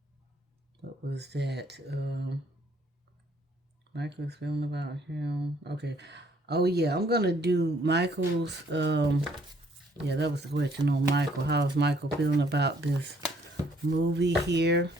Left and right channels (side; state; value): both; normal; correlation 0.64